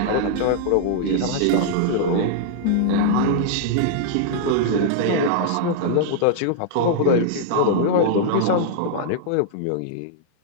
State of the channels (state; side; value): different; both; correlation -0.01